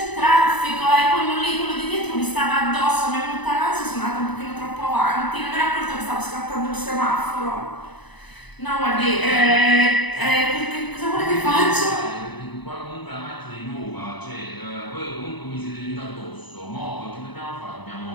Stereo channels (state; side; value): late; right; 1.0 ms